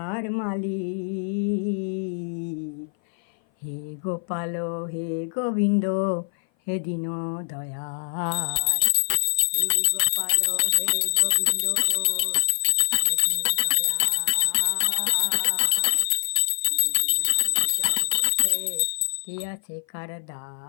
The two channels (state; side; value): silent; right; 57 dB below the other